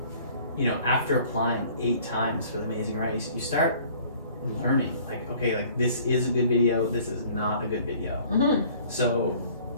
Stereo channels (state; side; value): inverted; both; correlation -0.53